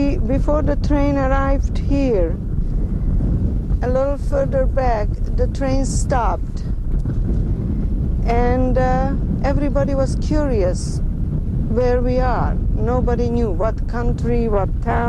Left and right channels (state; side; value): identical; both; correlation 1.00